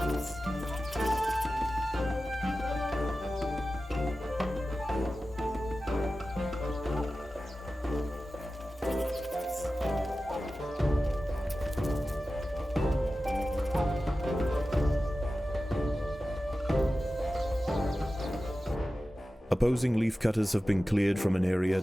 Opposing leaf cutters have been cleared from an area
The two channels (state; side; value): normal; both; correlation 0.94